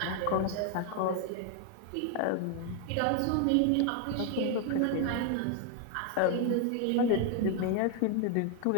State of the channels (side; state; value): both; different; correlation 0.00